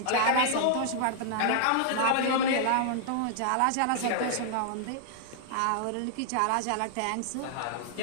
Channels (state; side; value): different; both; correlation -0.01